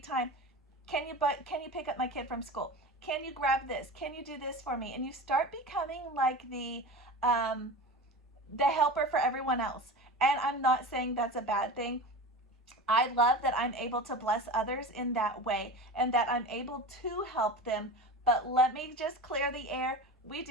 Can you pick up my kid from school? Can you grab this? Can you do this for me? And you start becoming like the helper for everyone else. And I'm not saying that's a bad thing. I love that I'm able to bless others in that way and that I'm able to help them. But let me just clear the air. We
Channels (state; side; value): normal; both; correlation 0.31